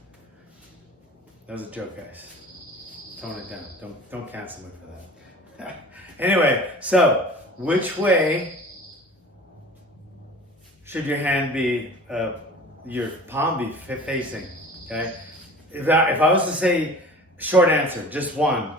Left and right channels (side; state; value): both; normal; correlation 0.41